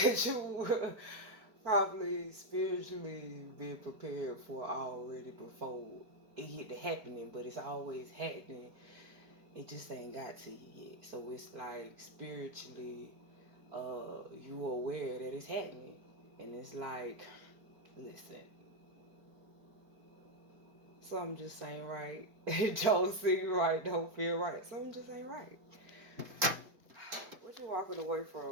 you probably spiritually been prepared for already before it hit the happening, but it's always happening. It just ain't got to you yet. So it's like spiritually, you aware that it's happening, and it's like, listen, something just ain't right. It don't seem right, don't feel right. Something just ain't right. What you walking away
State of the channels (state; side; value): late; left; 4.7 ms